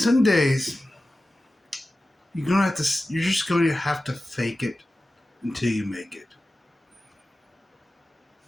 days you're just going to have to fake it until you make it.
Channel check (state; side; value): normal; both; correlation 0.95